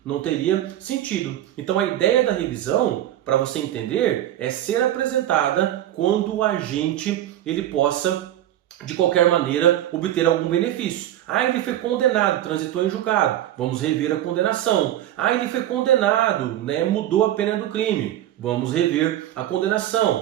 Não teria sentido. Então a ideia da revisão, para você entender, é ser apresentada quando o agente ele possa, de qualquer maneira, obter algum benefício. Ah, ele foi condenado, transitou em julgado. Vamos rever a condenação. Ah, ele foi condenado, né, mudou a pena do crime. Vamos rever a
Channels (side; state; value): left; quieter; 12.7 dB